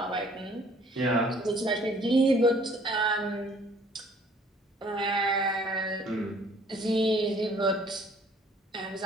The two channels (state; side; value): normal; both; correlation 0.57